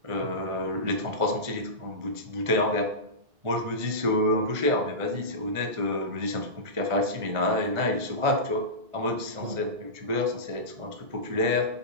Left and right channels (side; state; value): left; late; 1.5 ms